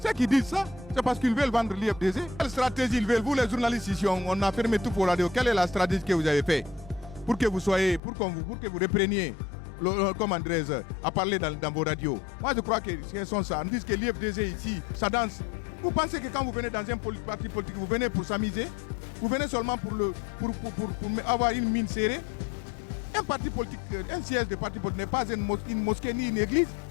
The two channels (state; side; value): drops out; right; at 8.0 s